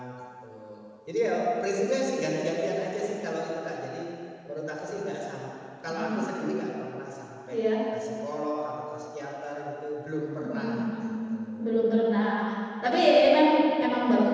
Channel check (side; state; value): both; identical; correlation 1.00